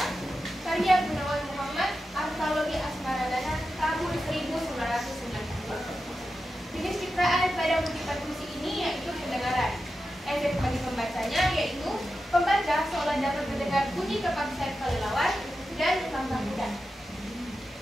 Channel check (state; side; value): normal; both; correlation 0.91